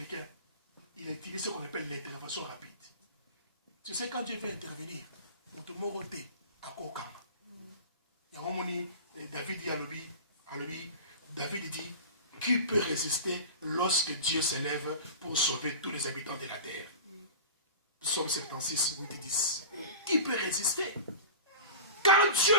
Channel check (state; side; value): inverted; both; correlation -0.33